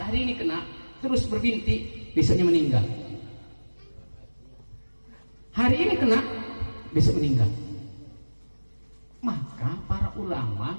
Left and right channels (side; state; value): both; inverted; correlation -1.00